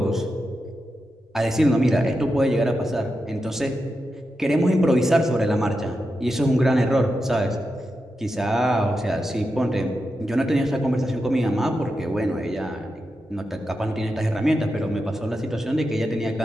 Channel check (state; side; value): normal; both; correlation 0.88